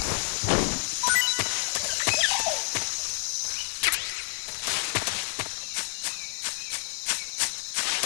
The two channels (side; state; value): right; silent; digital silence